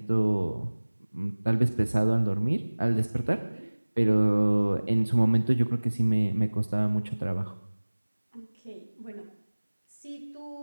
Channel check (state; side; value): inverted; both; correlation -1.00